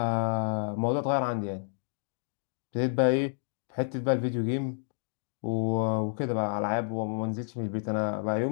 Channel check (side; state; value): right; silent; digital silence